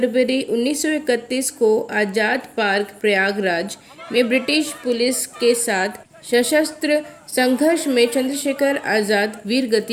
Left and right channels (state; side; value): identical; both; correlation 1.00